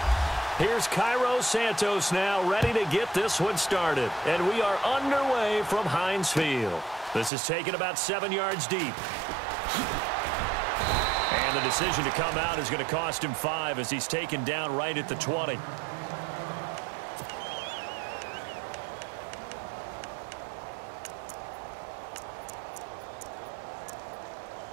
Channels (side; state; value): left; drops out; at 7.3 s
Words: Here's Cairo Santos now ready to get this one started. And we are underway from Heinz Field. This is taken about 7 yards deep. And the decision to come out is going to cost him 5 as he's taken down right at the 20.